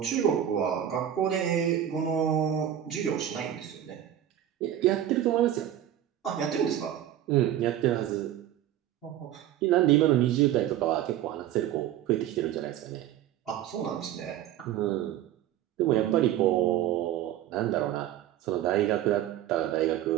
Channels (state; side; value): quieter; left; 11.5 dB